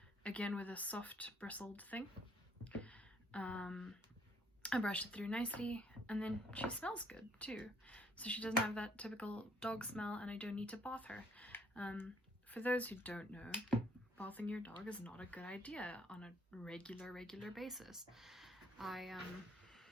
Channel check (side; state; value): both; normal; correlation 0.64